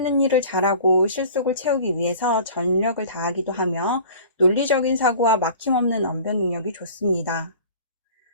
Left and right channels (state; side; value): inverted; both; correlation -0.44